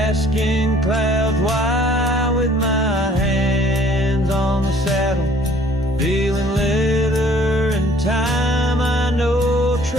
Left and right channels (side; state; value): both; normal; correlation 0.57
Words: clouds why. With my hands on the saddle, feeling leather and time, I know